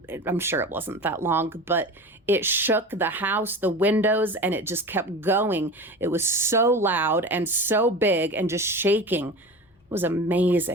I'm sure it wasn't that long, but it shook the house, the windows, and it just kept going. It was so loud and so big and just shaking. It was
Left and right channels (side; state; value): both; normal; correlation 0.32